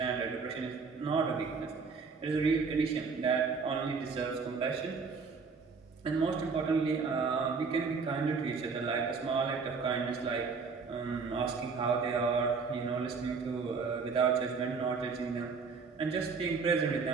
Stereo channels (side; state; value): left; quieter; 5.0 dB